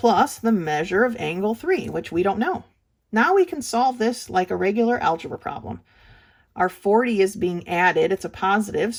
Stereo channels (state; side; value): identical; both; correlation 1.00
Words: the measure of angle 3, which we don't know. Now we can solve this like a regular algebra problem. Our 40 is being added. It's a positive,